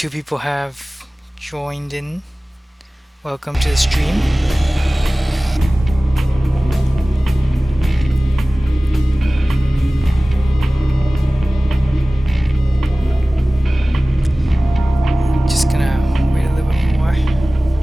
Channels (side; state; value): both; normal; correlation 0.98